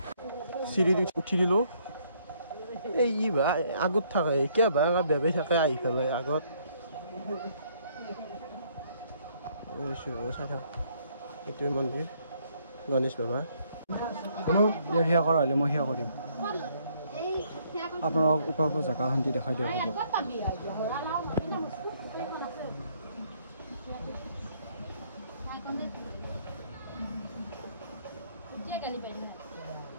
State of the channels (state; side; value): inverted; both; correlation -0.67